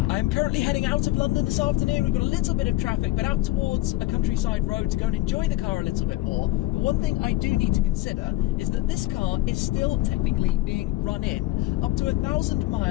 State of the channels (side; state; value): right; quieter; 17.8 dB